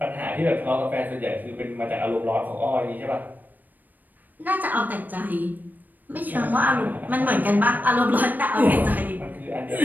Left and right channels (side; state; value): left; late; 0.087 ms